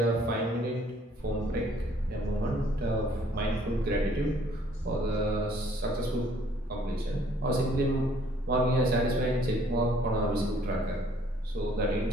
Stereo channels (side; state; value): both; normal; correlation 0.61